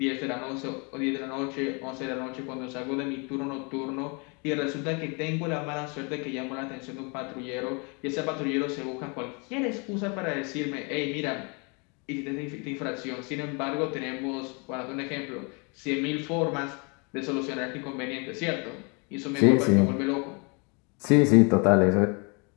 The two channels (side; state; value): right; quieter; 32.7 dB